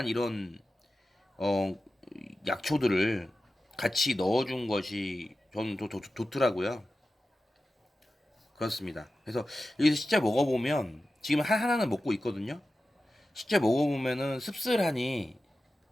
이런 어 약초들을 같이 넣어준 것이 저는 좋더라고요. 그렇습니다. 그래서 여기서 실제 먹어보면 지금 하나는 먹고 있거든요. 실제 먹어보면은 씁쓸하니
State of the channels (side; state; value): both; normal; correlation 0.93